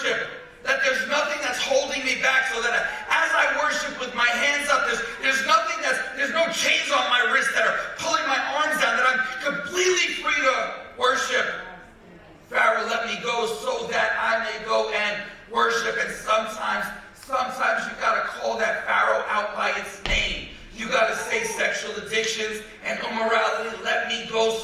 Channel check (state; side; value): identical; both; correlation 1.00